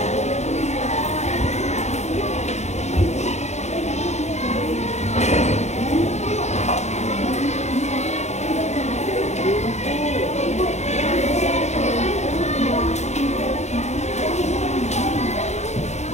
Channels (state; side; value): late; right; 0.33 ms